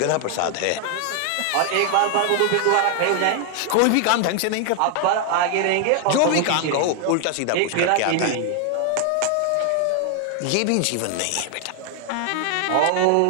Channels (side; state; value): both; different; correlation 0.00